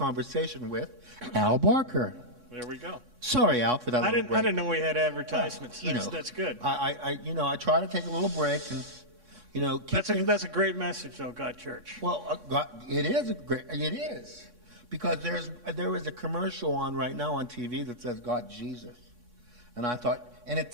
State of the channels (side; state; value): left; late; 3.6 ms